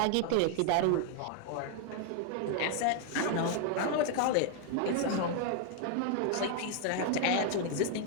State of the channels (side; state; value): both; different; correlation 0.00